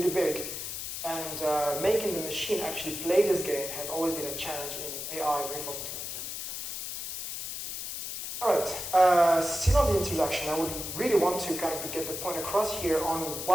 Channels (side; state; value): left; noise; hiss, 6 dB below the sound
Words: big, and making the machine actually play this game has always been a challenge in AI reinforcement learning. All right, still on the introduction, I would really want to kind of get the point across here on